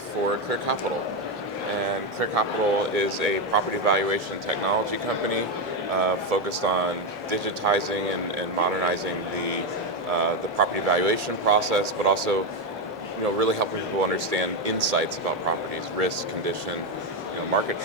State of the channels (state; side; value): normal; both; correlation 0.08